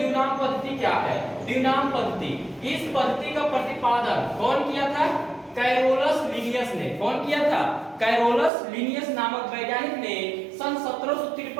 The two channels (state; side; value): drops out; left; at 8.5 s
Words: पद्धति क्या है। द्विनाम पद्धति, इस पद्धति का प्रतिपादन कौन किया था? कैरोलस लिनियस ने। कौन किया था? कैरोलस लिनियस नामक वैज्ञानिक ने सन